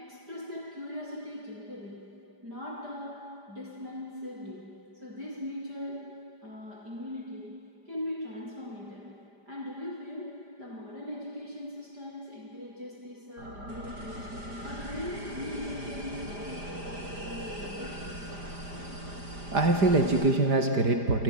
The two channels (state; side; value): late; left; 5.0 ms